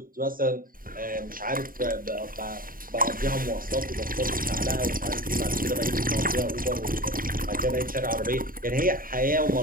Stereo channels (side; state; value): left; late; 0.41 ms